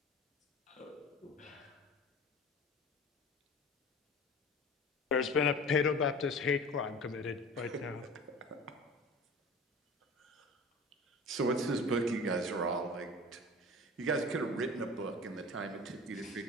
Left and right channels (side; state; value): both; normal; correlation 0.38